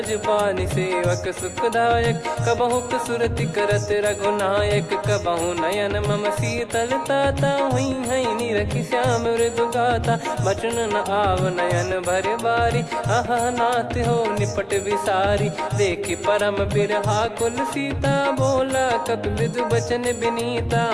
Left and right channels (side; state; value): both; identical; correlation 1.00